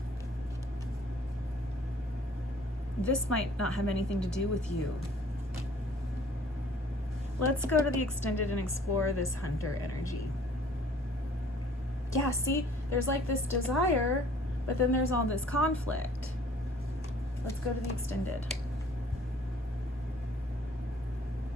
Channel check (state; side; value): normal; both; correlation 0.54